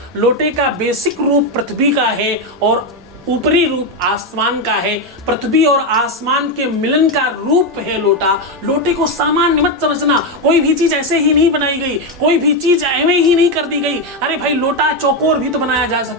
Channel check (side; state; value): both; normal; correlation 0.08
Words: लोटे का बेसिक रूप पृथ्वी का है और ऊपरी रूप आसमान का है। पृथ्वी और आसमान के मिलन का रूप है लोटा। लोटे को सामान्य मत समझना, कोई भी चीज ऐसे ही नहीं बनाई गई, कोई भी चीज एवं ही नहीं कर दी गई। अरे भाई, लोटा चौकोर भी तो बनाया जा